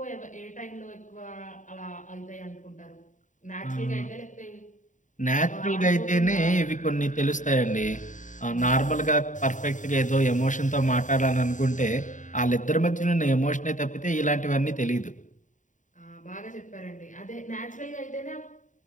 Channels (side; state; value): right; late; 0.36 ms